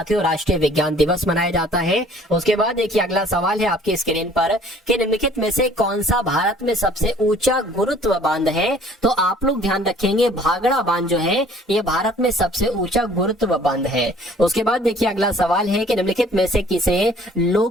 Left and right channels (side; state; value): both; normal; correlation 0.54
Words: राष्ट्रीय विज्ञान दिवस मनाया जाता है। उसके बाद देखिए, अगला सवाल है आपकी स्क्रीन पर कि निम्नलिखित में से कौन सा भारत में सबसे ऊंचा गुरुत्व बांध है? तो आप लोग ध्यान रखेंगे, भागड़ा बांध जो है ये भारत में सबसे ऊंचा गुरुत्व बांध है। उसके बाद देखिए, अगला सवाल है कि निम्नलिखित में से किसे